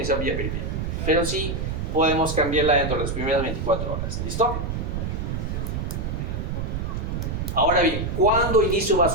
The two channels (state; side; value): noise; right; rumble, 3 dB below the sound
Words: vía periférica, pero sí podemos cambiarla dentro de las primeras 24 horas. ¿Listo? Ahora bien, ¿cuándo inicio